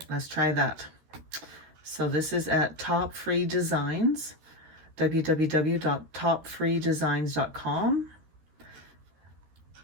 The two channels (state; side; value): late; left; 13 ms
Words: let's try that. So this is at Top Free Designs, www.topfreedesigns.com.